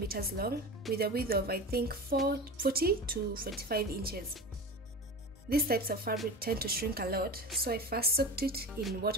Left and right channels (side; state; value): both; normal; correlation 0.31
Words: long with a width of I think 40 to 45 inches. These types of fabric tend to shrink a lot, so I first soaked it in